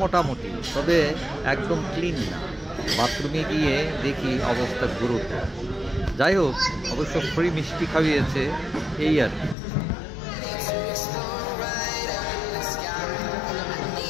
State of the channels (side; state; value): right; drops out; at 9.6 s